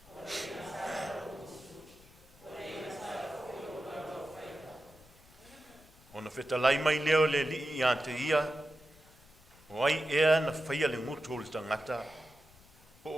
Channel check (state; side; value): noise; left; rumble, 26 dB below the sound